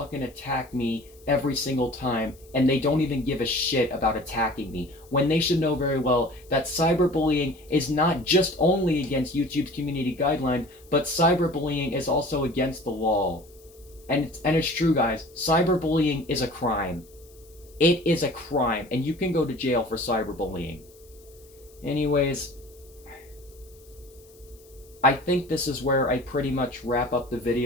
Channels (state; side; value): noise; left; hiss, 27 dB below the sound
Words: attack me every single time, and they don't even give a shit about attacking me, when they should know very well that cyberbullying is not just only against YouTube's community guidelines, but cyberbullying is also against the law. And it's true, guys. Cyberbullying is a crime. It is a crime, and you can go to jail for cyberbullying. Anyways, I think this is where I pretty much wrap up the